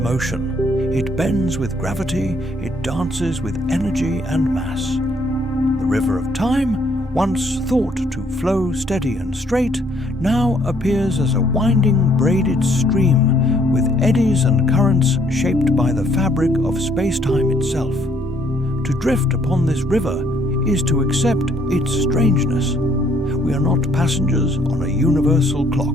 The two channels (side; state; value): both; normal; correlation 0.66